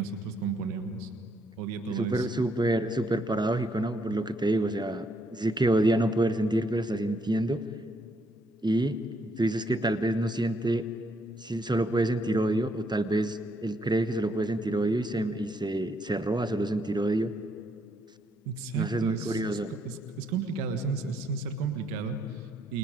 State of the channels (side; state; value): both; normal; correlation 0.73